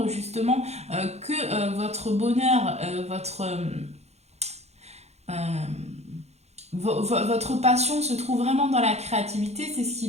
justement que votre bonheur, votre passion se trouve vraiment dans la créativité, c'est ce qui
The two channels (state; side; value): late; left; 0.31 ms